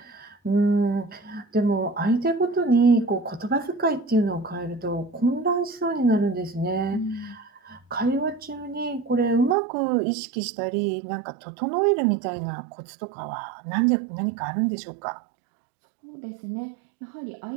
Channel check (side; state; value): left; drops out; at 9.6 s